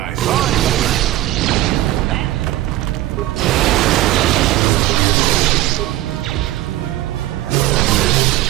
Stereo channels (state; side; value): quieter; left; 15.5 dB